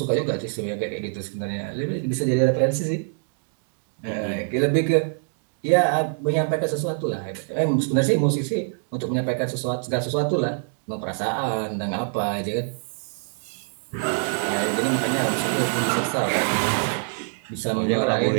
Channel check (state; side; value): silent; left; digital silence